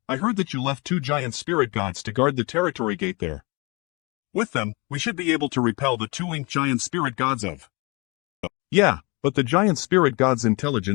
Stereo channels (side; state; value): right; quieter; 27.9 dB